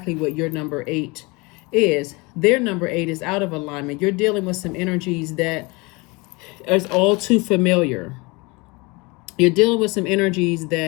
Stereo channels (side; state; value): right; quieter; 26.1 dB